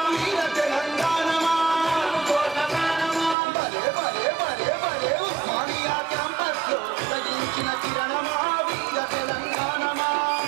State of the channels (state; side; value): drops out; left; at 3.4 s